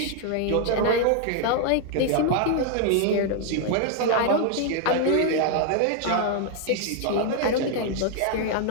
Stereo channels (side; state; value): both; different; correlation 0.00